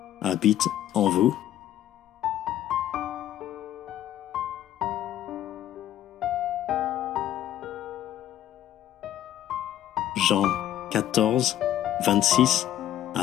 habite en vous? Jean 14, 26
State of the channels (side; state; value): right; quieter; 12.0 dB